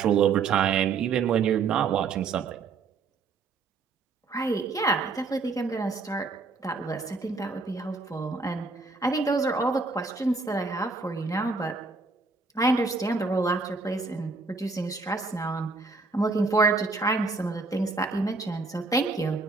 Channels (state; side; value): quieter; left; 4.2 dB